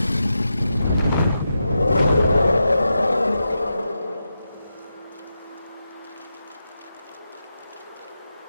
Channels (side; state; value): both; inverted; correlation -0.88